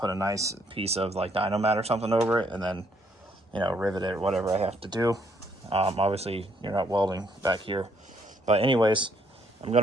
a nice piece of like Dynomat or something over it, and then rivet it or whatever I have to do. Obviously you're not welding back here, but anyways, I'm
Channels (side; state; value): both; normal; correlation 0.69